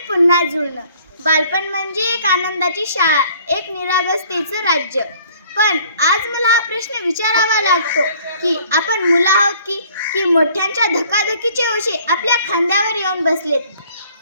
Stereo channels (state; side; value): inverted; both; correlation -0.56